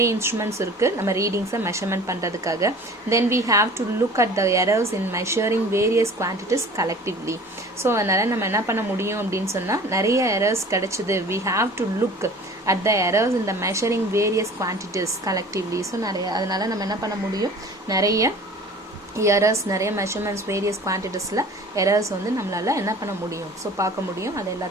இன்ஸ்ட்ருமெண்ட்ஸ் இருக்குது நம்ம ரீடிங்ஸை மெஷர்மெண்ட் பண்ணுறதுக்காக. Then we have to look at the errors in measuring various quantities collectively. So அதனால் நம்ம என்ன பண்ண முடியும் அப்படின்னு சொன்னால் நிறைய எரர்ஸ் கிடைச்சிது. We have to look at the errors in the measuring various quantities collectively. So அதனால நம்ம என்ன பண்ண முடியும், நிறைய எரர்ஸ், நிறைய மெஷர்மெண்ட்ஸ், வேரியஸ் குவான்டிட்டிஸில் எரர்ஸ் வந்து நம்மளால என்ன பண்ண முடியும், ஸோ பார்க்க முடியும். அது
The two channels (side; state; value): both; normal; correlation 0.44